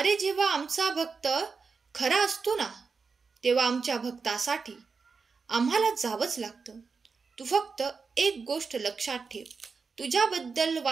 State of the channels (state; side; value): quieter; left; 5.0 dB